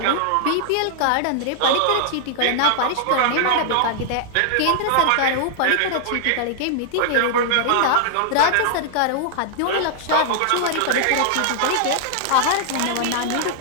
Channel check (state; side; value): different; both; correlation -0.01